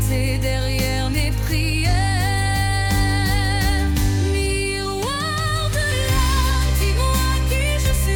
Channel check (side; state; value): both; identical; correlation 1.00